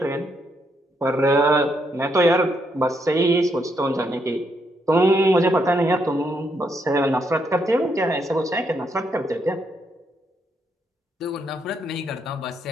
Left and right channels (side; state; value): both; normal; correlation 0.77